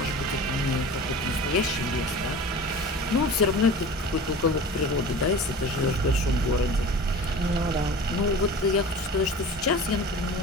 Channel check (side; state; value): both; normal; correlation 0.37